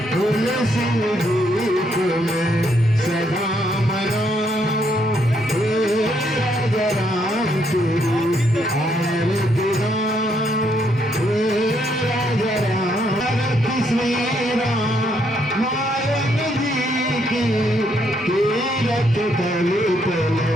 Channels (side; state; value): both; normal; correlation 0.73